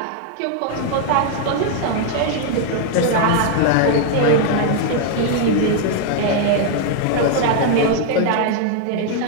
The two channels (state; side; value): different; both; correlation 0.00